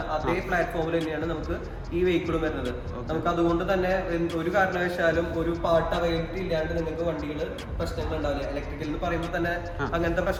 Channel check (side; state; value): both; identical; correlation 1.00